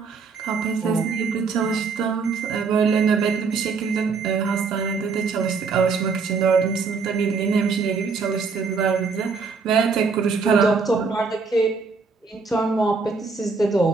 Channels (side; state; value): left; quieter; 4.8 dB